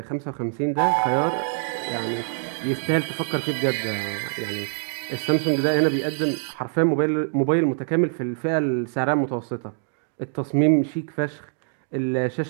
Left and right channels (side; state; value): left; silent; digital silence